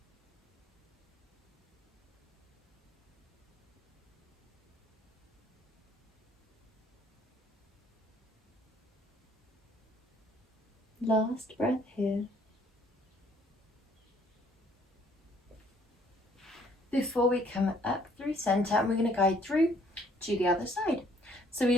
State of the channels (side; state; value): both; normal; correlation 0.62